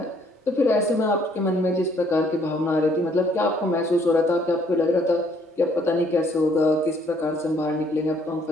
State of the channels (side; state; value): both; normal; correlation 0.64